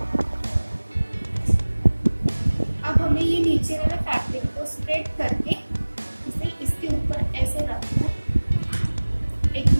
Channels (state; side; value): inverted; both; correlation -1.00